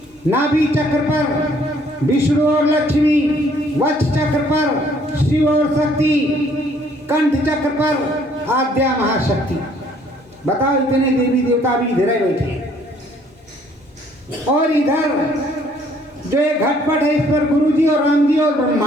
नाभि चक्र पर विष्णु और लक्ष्मी, वक्ष चक्र पर शिव और शक्ति, कंठ चक्र पर आद्या महाशक्ति। बताओ, इतने देवी देवता भी इधर ही बैठे हैं। और इधर जो एक घटपट है, इस पर गुरु जी और राम जी और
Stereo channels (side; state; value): both; normal; correlation 0.62